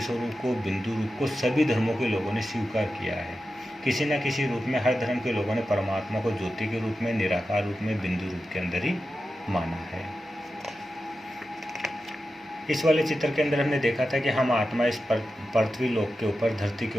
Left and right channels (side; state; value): both; normal; correlation 0.91